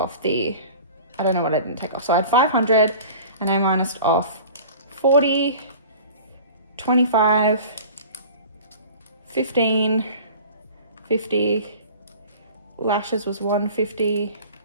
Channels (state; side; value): inverted; both; correlation -0.42